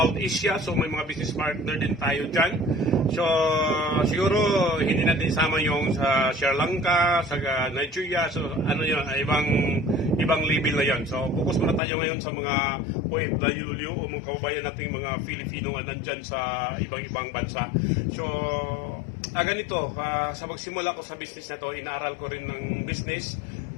Asia. So may mga business partner din tayo dyan. So siguro hindi natin isama yung sa Sri Lanka, sa Nigeria. So ano yun, ibang level na yan. So focus muna tayo ngayon sa mga OFW o mga kababayan nating mga Filipino na nandyan sa ibang bansa. So ganito, sa magsimula ko sa business na to, inaaral ko rin ng business.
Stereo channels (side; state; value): right; drops out; at 11.8 s